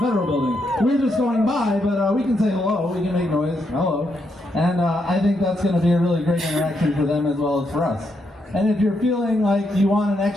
Federal Building. We're just going by, but we can say hello. We can make noise. Hello. And I think that's going to be a really great interaction for them as well as for us. And if you're feeling like you want an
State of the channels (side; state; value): both; normal; correlation 0.80